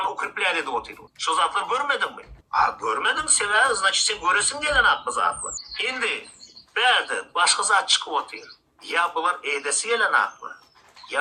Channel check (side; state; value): both; identical; correlation 1.00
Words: укрепляли de oturuyor. Şu zatlar görmedin mi? Görmedin sever, значит sen göresin gelen aklı zatlar. Şimdi, berde başka zat çıkıp oturuyor. Ya bunlar edesi gelen aklı.